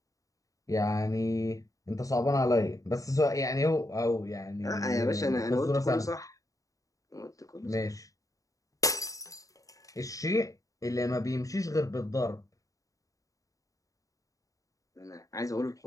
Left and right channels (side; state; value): right; late; 0.16 ms